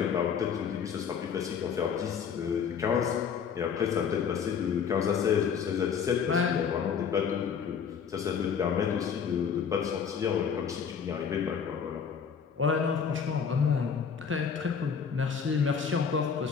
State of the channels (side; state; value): right; quieter; 6.8 dB